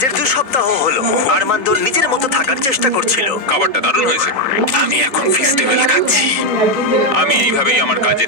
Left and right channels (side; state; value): left; late; 3.9 ms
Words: 2 সপ্তাহ হলো আরমান্দ নিজের মতো থাকার চেষ্টা করছিল। খাবারটা দারুণ হয়েছে। আমি এখন ফেস্টিভ্যাল খাচ্ছি। আমি এইভাবেই আমার